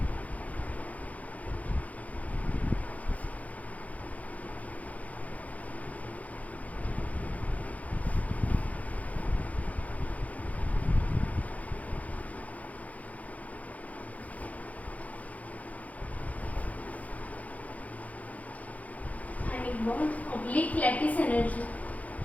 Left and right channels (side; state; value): right; late; 0.071 ms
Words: Ionic bond oblique lattice energy.